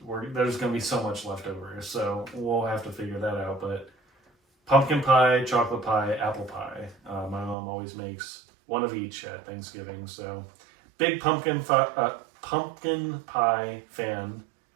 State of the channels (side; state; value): left; drops out; at 7.6 s